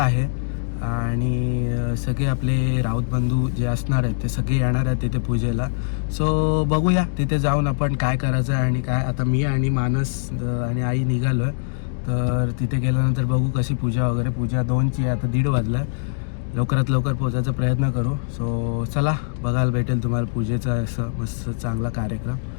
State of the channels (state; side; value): silent; right; digital silence